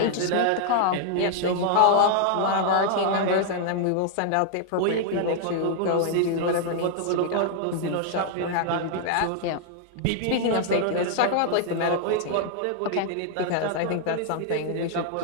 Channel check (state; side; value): different; both; correlation 0.00